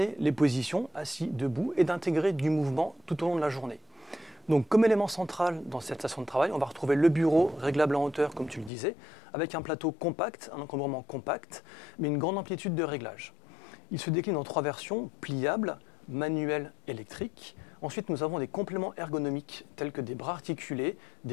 les positions, assis, debout, et d'intégrer du mouvement tout au long de la journée. Donc, comme élément central dans cette station de travail, on va retrouver le bureau réglable en hauteur, comme tu le disais, avec un plateau compact, un encombrement compact, mais une grande amplitude de réglage. Il se décline en 3 versions, pliable, manuel, électrique. Ensuite, nous avons des compléments ergonomiques, tels que des bras articulés,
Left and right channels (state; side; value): drops out; right; at 8.7 s